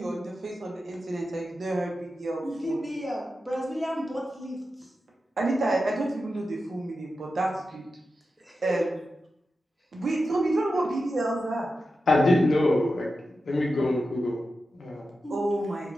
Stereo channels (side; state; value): both; normal; correlation 0.91